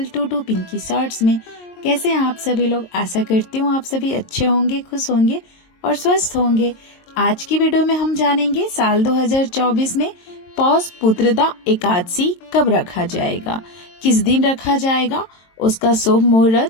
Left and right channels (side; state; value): right; late; 22 ms